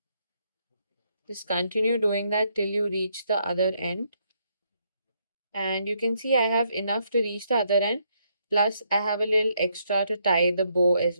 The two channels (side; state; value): both; inverted; correlation -0.74